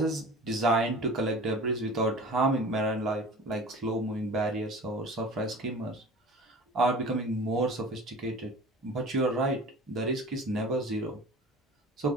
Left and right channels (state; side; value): normal; both; correlation 0.40